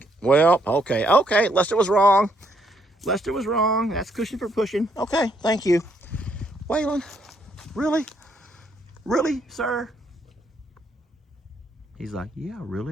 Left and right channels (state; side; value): normal; both; correlation 0.72